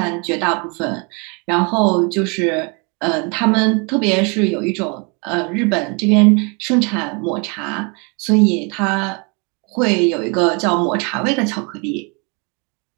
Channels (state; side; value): quieter; left; 32.4 dB